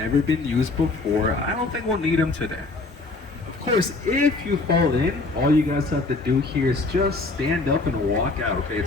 been used before. I don't think we'll need them today. Of course, if you fall in, all you guys have to do here is just stand up and walk out, okay?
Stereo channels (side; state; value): right; quieter; 3.5 dB